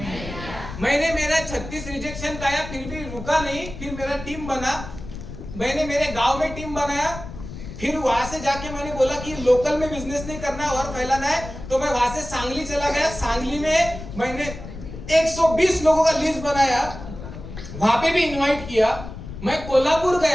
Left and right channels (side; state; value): left; noise; rumble, 11 dB below the sound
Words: मैंने मेरा 36 रिजेक्शन खाया, फिर भी रुका नहीं। फिर मेरा टीम बना, मैंने मेरे गांव में टीम बनाया। फिर वहां से जाके मैंने बोला कि लोकल में बिजनेस नहीं करना है और फैलाना है, तो मैं वहां से सांगली चला गया। सांगली में मैंने 120 लोगों का लिस्ट बनाया, वहां पे भी इनवाइट किया। मैं कोल्हापुर